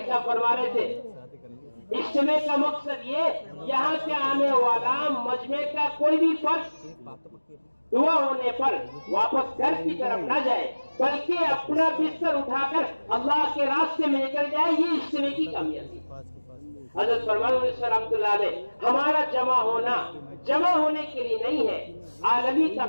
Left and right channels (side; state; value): both; inverted; correlation -1.00